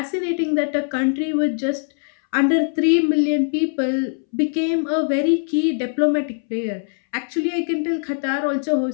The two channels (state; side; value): silent; right; 65 dB below the other